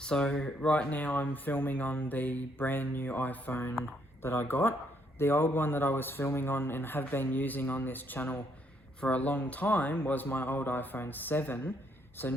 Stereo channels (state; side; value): normal; both; correlation 0.71